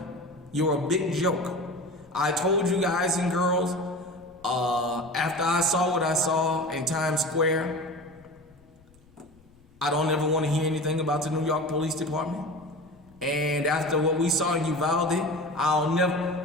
You're a big joke. I told you guys and girls, after I saw what I saw in Times Square, I don't ever want to hear anything about the New York Police Department. And after what we saw in Uvalde,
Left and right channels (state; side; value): noise; left; rumble, 29 dB below the sound